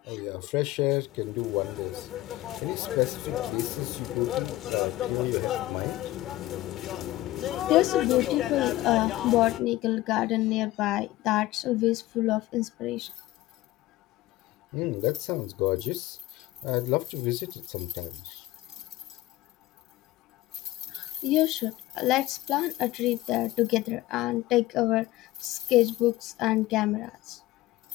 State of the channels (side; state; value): right; quieter; 16.9 dB